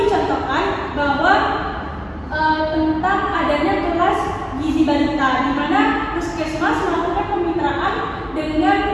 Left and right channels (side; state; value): both; identical; correlation 1.00